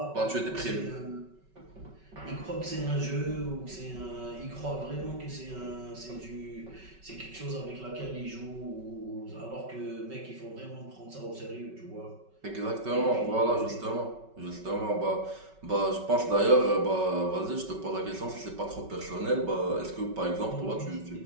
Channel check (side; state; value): left; late; 5.3 ms